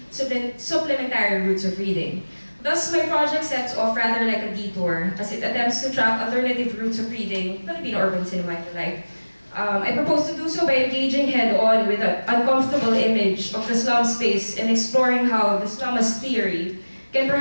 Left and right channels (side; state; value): both; inverted; correlation -1.00